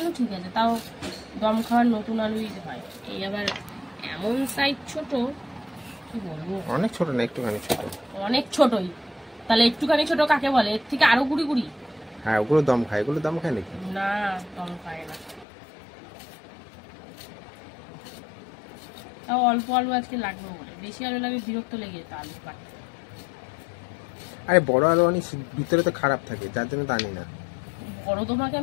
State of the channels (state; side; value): drops out; right; at 15.5 s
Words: ঠিক আছে, তাও দম খাওয়ার নতুন আলুই হয়। এই আবার এমন সাইজ ছোট, কি বলবো, অনেক ছোট না, একটুখানি ছোট। অনেক ছোটই, তাহলে একটুখানি ছোট কাকে বলে? এর থেকে আরো গুড়ি গুড়ি। হ্যাঁ, ওগুলো দম খায়, এগুলো দম খায় নাকি? না, দম খায় না। তাও অল্প আলু আজকে লাগবে বলে, বেশি আলু লাগে বিরক্ত লেগে যেত আলু কাটতে। আরে বড় আলু অনেক ভিতরে তো খারাপ থাকে, যার জন্য তো আনি না। বড় তোমাকে